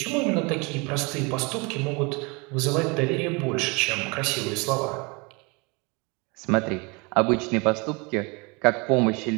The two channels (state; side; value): quieter; left; 28.6 dB